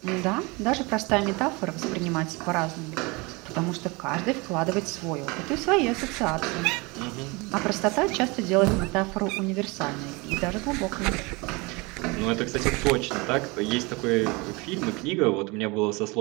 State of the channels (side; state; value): left; quieter; 26.3 dB